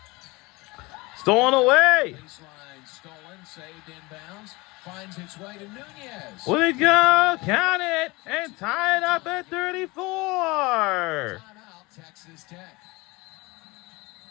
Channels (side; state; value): right; quieter; 23.5 dB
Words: Stolen away. Baseline stolen, saved inbounds. Finds its way to Nunez. Will it go? Count it and tie it up at 34. Timeout, Texas Tech.